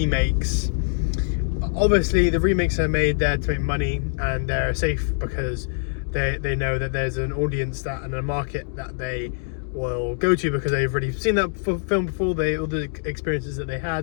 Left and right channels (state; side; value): silent; right; digital silence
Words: obviously the remakes are made there to make money and they're safe because they know that there's an audience that and a market that they will go to because they've already seen that film before. All the experiences that they